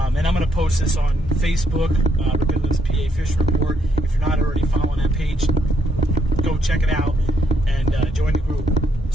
And I'm going to post this on Facebook, Rippin PA Fish Report. If you're not already following that page, go check it out and join the group.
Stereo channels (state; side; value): normal; both; correlation 0.74